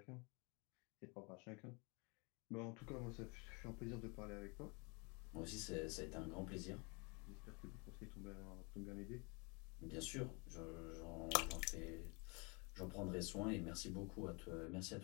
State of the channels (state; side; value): quieter; right; 31.1 dB